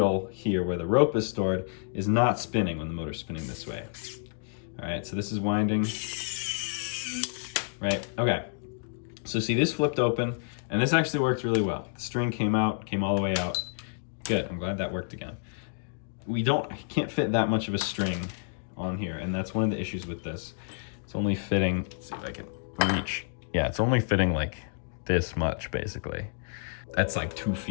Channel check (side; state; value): right; silent; digital silence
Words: here where the rope is stored is not spinning when the motor's spinning this way. All right, so this is winding. Right, okay. So see, this flipped open, and this actually worked really well. The string came out, came all the way out. Good, I'm glad that worked again. I can't fit that much of a string on here, and that's one of the issues with this. It's only fitting, let's see if I can reach. Yeah, it's only fitting like this much, basically. That's like 2